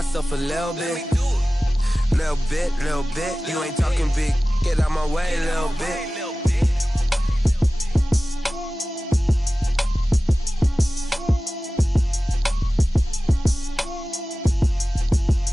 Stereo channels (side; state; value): both; normal; correlation 0.96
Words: a little bit. Little bit, little bit. You ain't talking big. Get out my way, little bit.